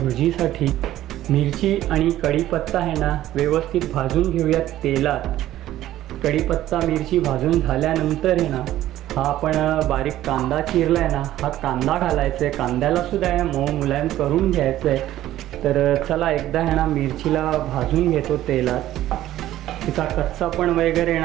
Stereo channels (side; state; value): left; quieter; 13.8 dB